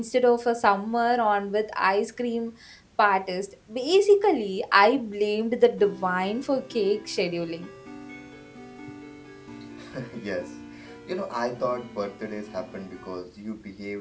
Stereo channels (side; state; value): both; identical; correlation 1.00